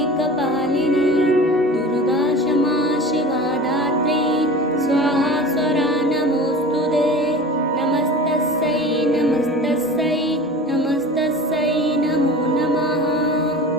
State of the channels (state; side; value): normal; both; correlation 0.37